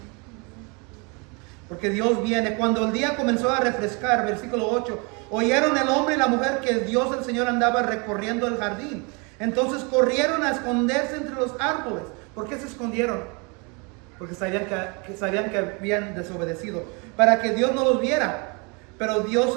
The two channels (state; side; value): quieter; left; 31.4 dB